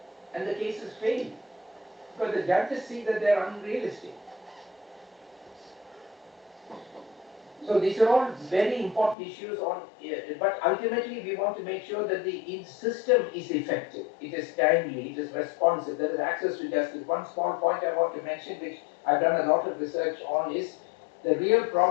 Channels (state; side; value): drops out; right; at 9.2 s